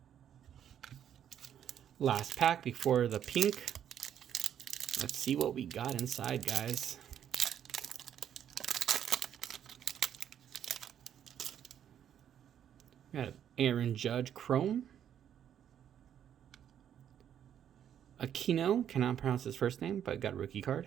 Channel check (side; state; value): left; quieter; 9.6 dB